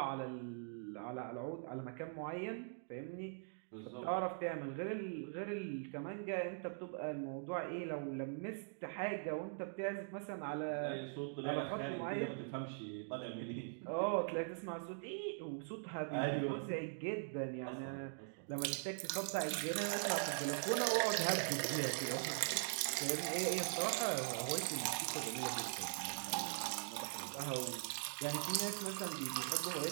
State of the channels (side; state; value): left; silent; digital silence